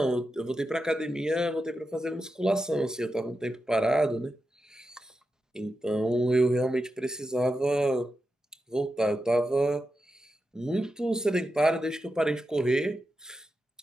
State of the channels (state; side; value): normal; both; correlation 0.89